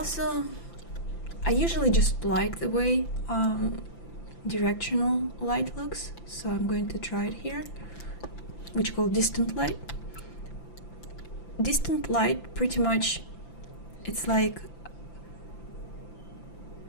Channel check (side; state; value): right; late; 5.9 ms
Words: I usually just like the way directional light looks, so I'm going to try it here, which is called distant light. Distant light, pretty much, it's like